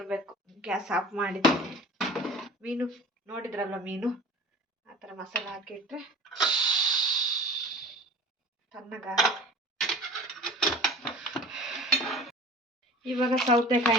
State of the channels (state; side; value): normal; both; correlation 0.41